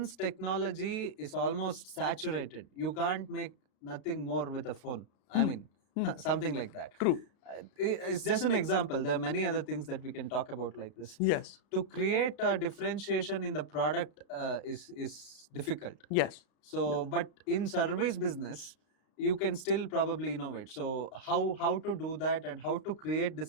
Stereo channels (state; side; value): late; right; 35 ms